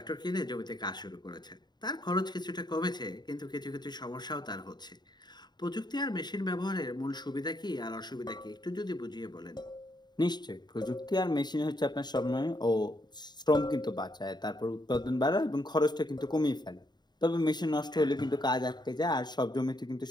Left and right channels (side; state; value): right; late; 0.21 ms